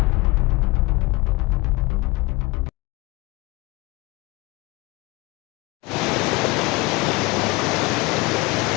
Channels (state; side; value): quieter; right; 23.0 dB